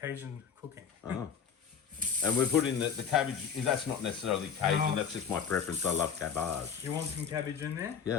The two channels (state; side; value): quieter; right; 7.2 dB